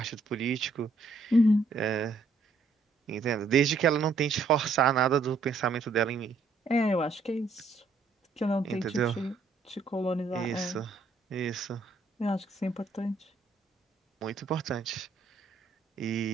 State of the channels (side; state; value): left; quieter; 3.8 dB